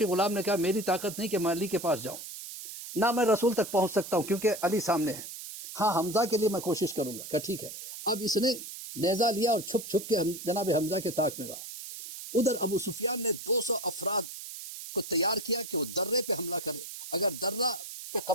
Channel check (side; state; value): right; noise; hiss, 10 dB below the sound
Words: غلام نے کہا میری طاقت نہیں کہ میں علی کے پاس جاؤں, نہ میں رسول تک پہنچ سکتا ہوں کیونکہ علی سامنے ہے. ہاں حمزہ کے لیے میں کوشش کروں گا. کہ ٹھیک ہے. اب اس نے نیزہ لیا اور چھپ چھپ کے جناب حمزہ کے طاق میں رہا. ادھر ابو سفیان نے 200 افراد کو تیار کیا کہ وہ درے پہ حملہ کرے. اگر درہ پہ